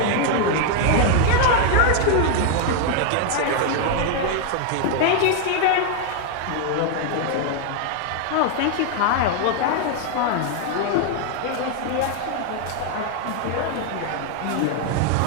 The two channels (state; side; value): different; both; correlation 0.00